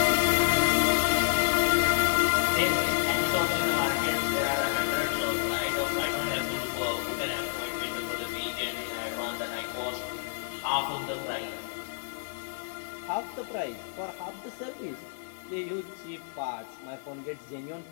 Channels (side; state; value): right; silent; 58 dB below the other